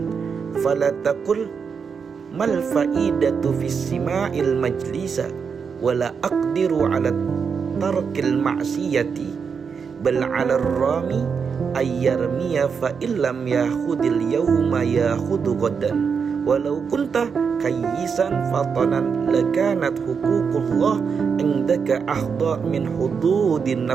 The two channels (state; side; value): quieter; left; 6.1 dB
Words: fala taqul mal faidatu fis sima'il majlisa wala aqdiru ala tarkil ma'siyati bal ala rami ayyarmiya fa illam yakhudil yawma yakhudu ghadan walau kunta kayyisan fatanan lakanat huququllah indaka ahda min hududin